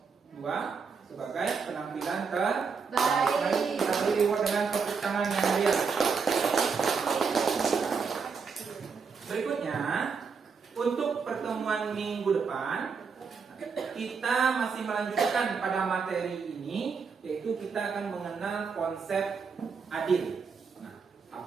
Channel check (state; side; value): quieter; left; 5.5 dB